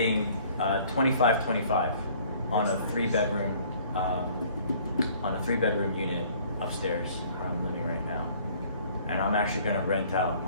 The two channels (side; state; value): both; inverted; correlation -0.56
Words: 25 on a 3-bedroom unit upstairs where I'm living right now, and I'm actually gonna rent out